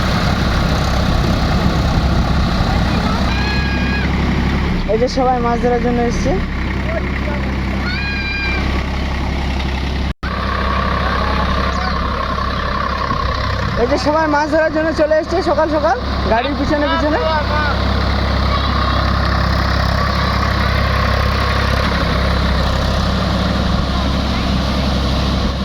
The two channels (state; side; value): identical; both; correlation 1.00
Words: এই যে সবাই মাছ ধরার জন্য এসছে। এই যে সবাই মাছ ধরার জন্য চলে এসছে সকাল সকাল গাড়ির পিছনে পিছনে।